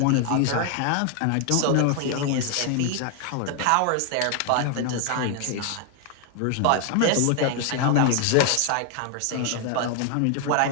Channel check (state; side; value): different; both; correlation 0.00